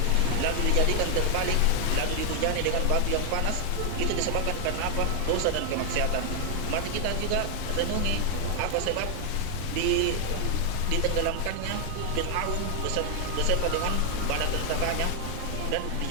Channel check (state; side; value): different; both; correlation 0.00